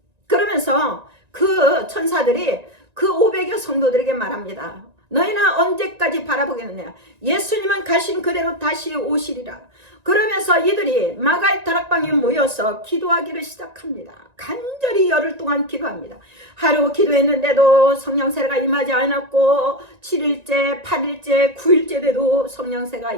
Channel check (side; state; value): left; late; 1.9 ms